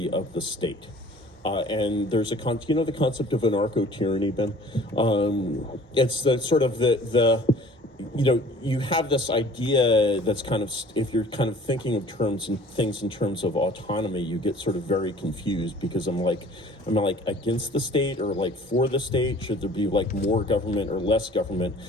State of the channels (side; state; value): both; normal; correlation 0.49